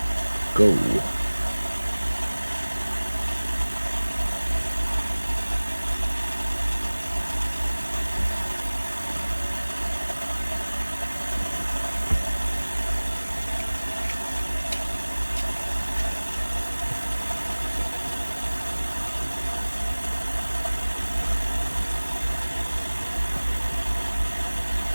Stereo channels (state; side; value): inverted; both; correlation -1.00